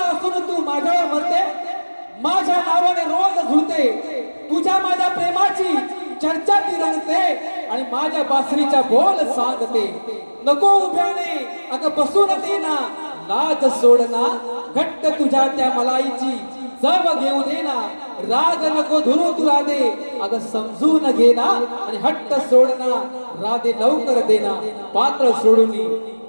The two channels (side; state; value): both; inverted; correlation -1.00